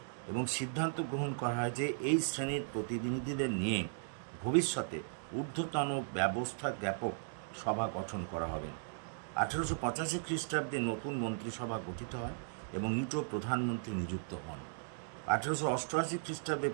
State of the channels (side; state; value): left; silent; digital silence